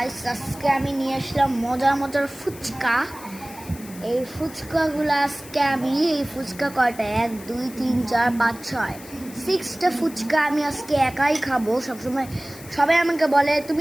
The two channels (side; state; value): left; noise; hiss, 18 dB below the sound